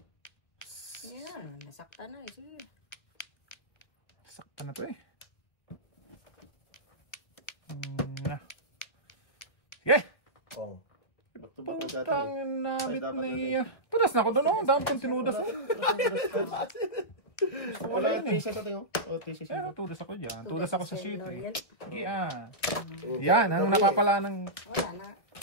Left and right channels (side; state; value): right; late; 1.9 ms